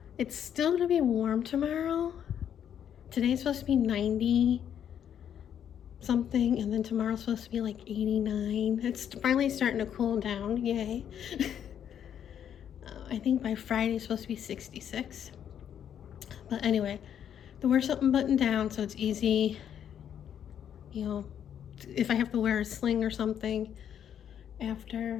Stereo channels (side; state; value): right; quieter; 9.2 dB